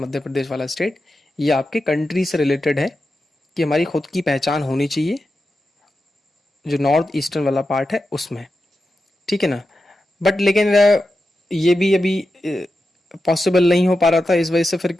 प्रदेश वाला स्टेट, ये आपके कंट्री से रिलेटेड है कि हमारी खुद की पहचान होनी चाहिए, जो नॉर्थ ईस्टर्न वाला पार्ट है उसमें, ठीक है ना। बट लेकिन ये भी अभी पॉसिबल नहीं हो पा रहा था। इस वजह से फिर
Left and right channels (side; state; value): both; normal; correlation 0.90